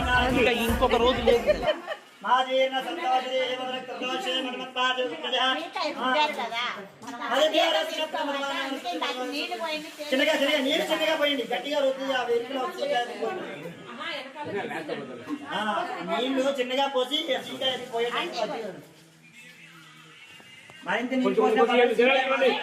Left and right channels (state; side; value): identical; both; correlation 1.00